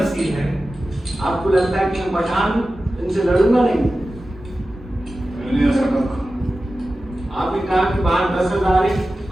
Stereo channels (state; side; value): normal; both; correlation 0.94